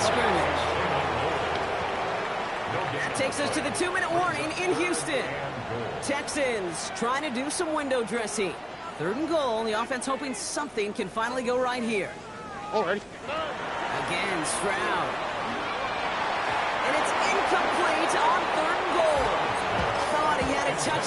scrimmage. That takes us to the 2-minute warning in Houston. Texans trying to do some window dressing. 3rd and goal. The offense hoping something can finally go right here. Already. Again, Stroud. And it's incomplete on 3rd and goal. Thought he had a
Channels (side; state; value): both; identical; correlation 1.00